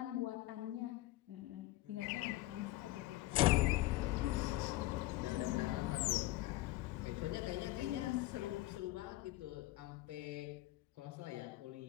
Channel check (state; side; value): quieter; right; 17.7 dB